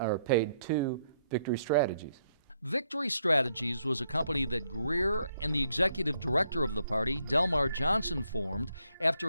paid to Victory Strategies. Victory Strategies was a company that Greer and the executive director of the party, Delmar Johnson, formed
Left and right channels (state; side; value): inverted; both; correlation -0.74